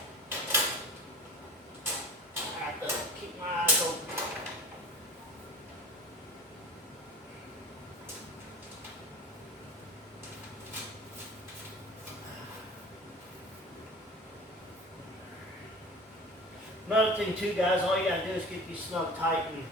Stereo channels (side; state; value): both; normal; correlation 0.38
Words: I have to keep my eyes open. Another thing too, guys, all you gotta do is get these snug tight, and